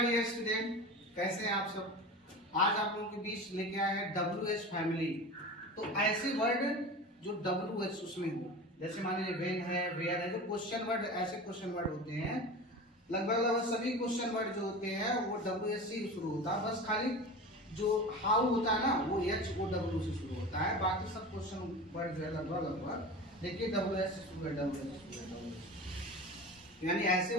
dear student, कैसे हैं आप सब। आज आप लोगों के बीच लेके आए हैं WH फैमिली। तो ऐसे वर्ड जो WH उसमें हो, जैसे मान लीजिए वेन है, वेयर है, जो क्वेश्चन वर्ड, ऐसे क्वेश्चन वर्ड होते हैं। लगभग सभी क्वेश्चन वर्ड जो होते हैं वो WH से शुरू होता है। बस खाली जो हाउ होता है ना, वो HOW से शुरू होता है। बाकी सब क्वेश्चन वर्ड जो है लगभग देखिए WH से शुरू है, WH यानी ऐसे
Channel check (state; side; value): normal; both; correlation 0.32